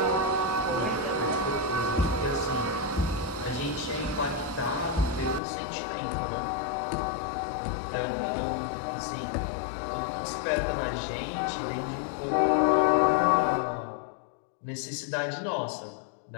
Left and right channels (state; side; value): drops out; right; at 5.4 s